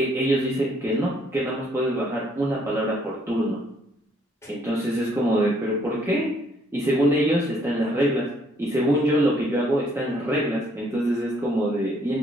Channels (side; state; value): both; normal; correlation 0.66